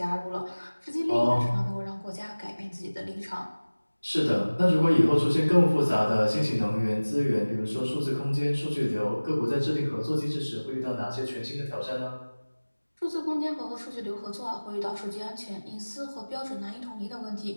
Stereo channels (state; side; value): inverted; both; correlation -1.00